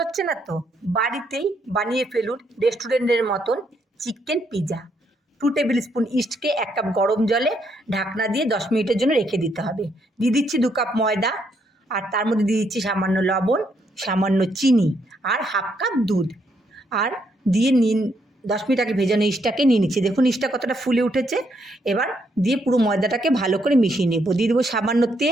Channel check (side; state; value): both; normal; correlation 0.74